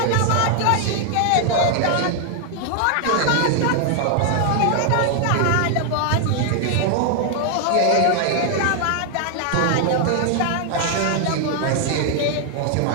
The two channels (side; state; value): both; different; correlation 0.00